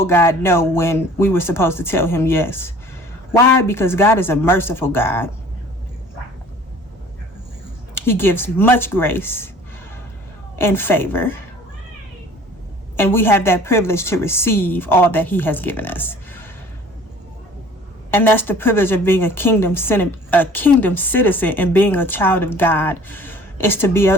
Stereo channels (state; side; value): normal; both; correlation 0.49